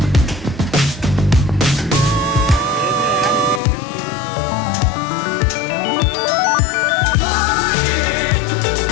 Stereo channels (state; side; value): drops out; right; at 3.6 s